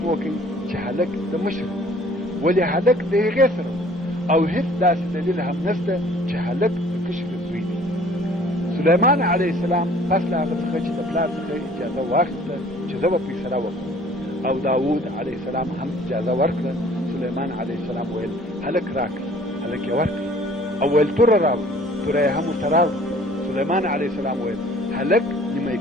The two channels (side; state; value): both; normal; correlation 0.53